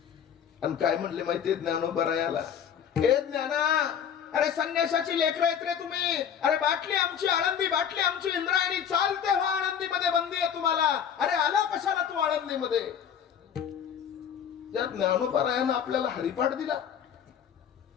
आणि काय म्हणले माहितीये ज्ञानोबारायाला, हे ज्ञाना, अरे संन्यासाची लेकरं आहेत रे तुम्ही. अरे बाटली आमची आळंदी, बाटली आमची इंद्रायणी, चालते व्हा आळंदीमध्ये, बंदी आहे तुम्हाला. अरे आला कशाला तू आळंदीमध्ये? ज्या ज्ञानोबारायानं आपल्याला हरिपाठ दिला,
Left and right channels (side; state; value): right; quieter; 8.4 dB